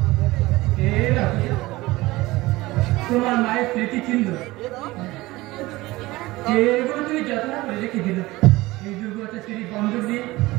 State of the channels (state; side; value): quieter; left; 19.7 dB